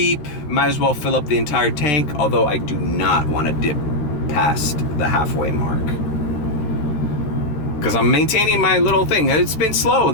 Might as well fill up the entire tank, although I do not want to dip past the halfway mark. Because I'm maintaining my little thing. It's been slow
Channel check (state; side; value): late; right; 13 ms